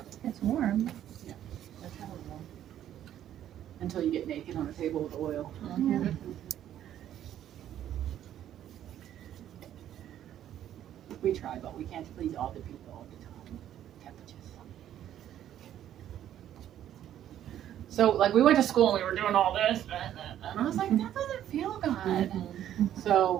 warm. That's kind of warm. Until you get naked on a table with oil. Yeah. We try, but we can't please all the people all the time. Temperatures. So, like, we went to school and we were doing all this, and I was like, that doesn't feel good.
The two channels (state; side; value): quieter; left; 11.2 dB